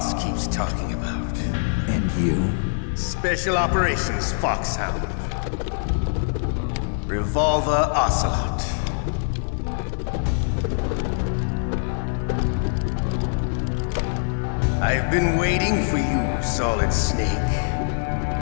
keeps talking about. And you? Special Operations Foxhound. Revolver Ocelot. I've been waiting for you, Solid Snake.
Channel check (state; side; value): silent; right; digital silence